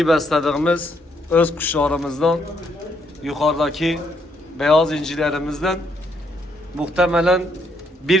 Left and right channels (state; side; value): normal; both; correlation 0.73